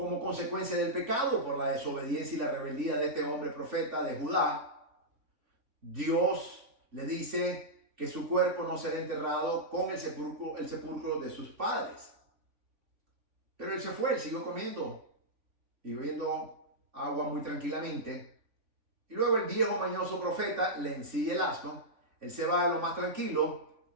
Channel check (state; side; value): late; left; 3.5 ms